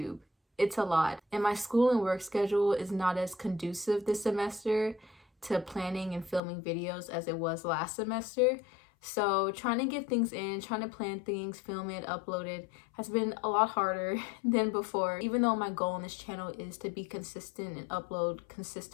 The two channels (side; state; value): right; drops out; at 6.4 s